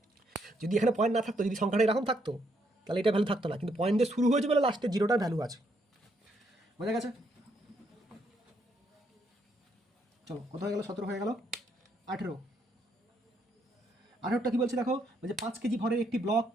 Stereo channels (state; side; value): normal; both; correlation 0.74